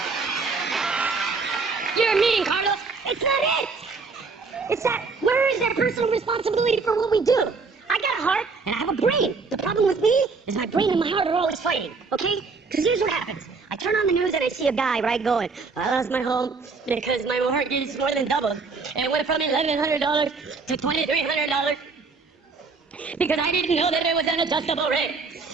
You're mean, Carlos. It's not it. It's that, where is their personal responsibility for what we do? I got a heart, and I have a brain. The problem with me is my brain and my heart are always fighting, okay? Because here's what happens. I turn on the news and I see a guy, right, going, I lost my home because my mortgage is more than doubled. And it went from $1,100 to $2,300 because I didn't know that it was an adjustable rate.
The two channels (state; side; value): quieter; left; 4.5 dB